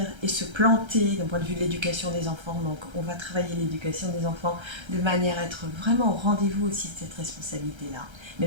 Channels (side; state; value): left; late; 1.3 ms